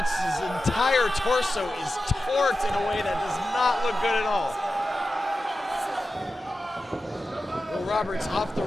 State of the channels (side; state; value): both; normal; correlation 0.92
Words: entire torso is torqued in a way that does not look good at all. Will Roberts off the